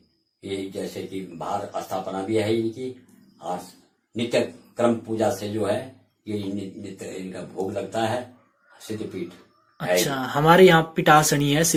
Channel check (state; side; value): identical; both; correlation 1.00